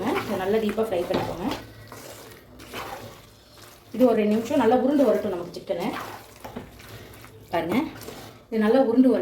இதை நல்லா டீப்பாக ஃப்ரை பண்ணிக்கோங்க. இது ஒரு 2 நிமிஷம் நல்லா உருண்டு வரட்டும் நமக்கு சிக்கனு. பாருங்கள், இது நல்லா உருண்டு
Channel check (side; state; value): both; identical; correlation 1.00